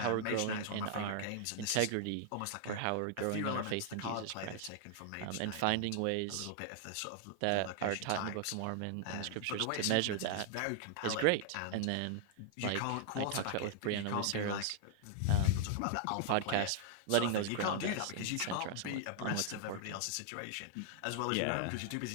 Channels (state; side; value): different; both; correlation 0.00